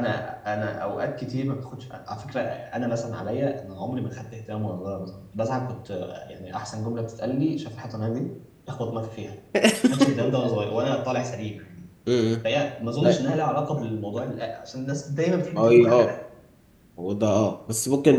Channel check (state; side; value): identical; both; correlation 1.00